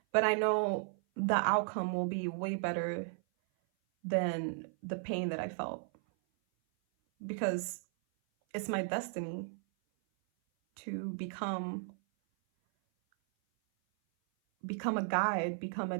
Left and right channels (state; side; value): silent; left; 54 dB below the other